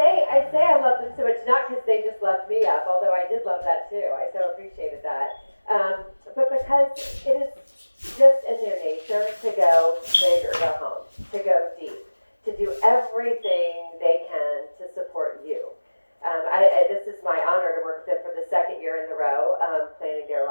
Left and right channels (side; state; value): both; inverted; correlation -1.00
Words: I love them so much, not because they just loved me up, although I did love that too. I so appreciated that. But because it is just in their nature to go big or go home, to go deep, to do everything they can to support you. This is my honor to work with them for the second year in a row, planning their